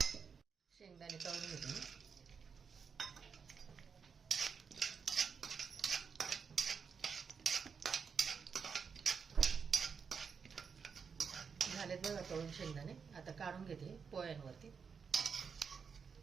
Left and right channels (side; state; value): left; quieter; 6.0 dB